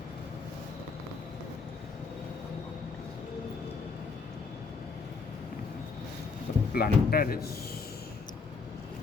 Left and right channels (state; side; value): quieter; right; 4.8 dB